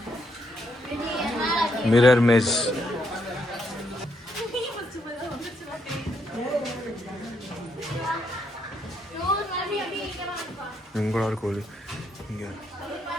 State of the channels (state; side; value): normal; both; correlation 0.76